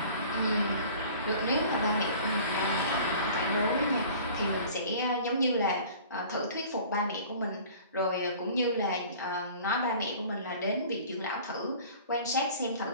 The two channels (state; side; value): inverted; both; correlation -0.46